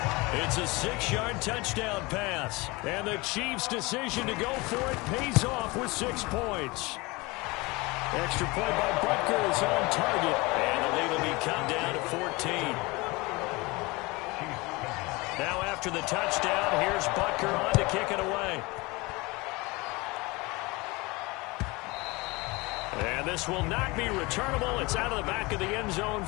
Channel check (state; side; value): quieter; right; 24.2 dB